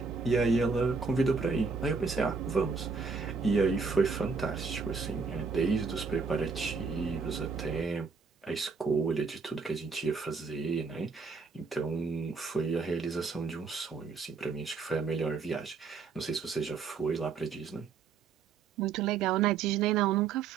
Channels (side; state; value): left; quieter; 4.9 dB